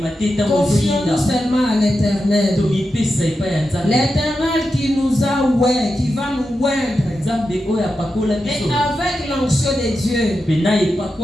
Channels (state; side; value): normal; both; correlation 0.89